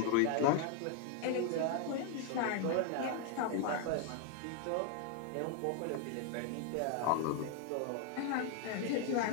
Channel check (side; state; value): both; different; correlation 0.00